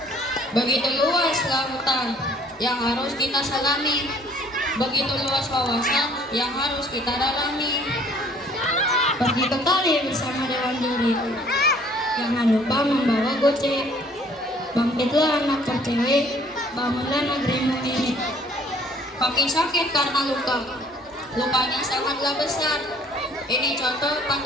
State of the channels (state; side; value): normal; both; correlation 0.57